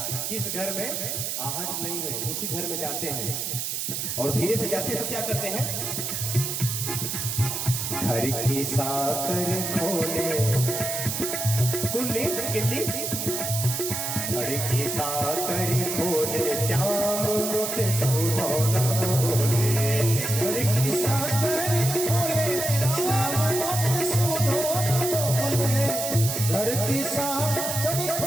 किस घर में आहट नहीं है, उसी घर में जाते हैं और धीरे से जाते हैं तो क्या करते हैं, घर की साकर खोले कुल्ली किल्ली, घर की साकर खोले श्याम मुत सुधोना बोले। घर की साकर खोले श्याम मुत सुधोना बोले। घर की साकर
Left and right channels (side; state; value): right; noise; hiss, 2 dB below the sound